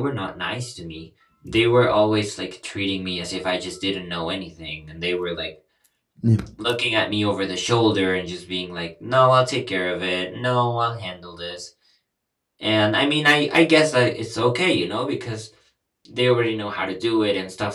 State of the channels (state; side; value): identical; both; correlation 1.00